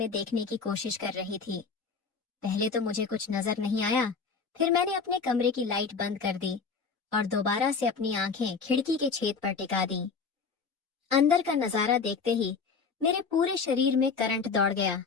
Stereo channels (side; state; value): right; quieter; 5.1 dB